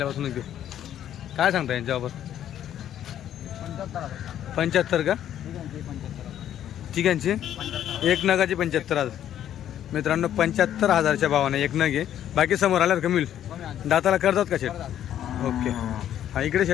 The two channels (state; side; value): quieter; right; 10.9 dB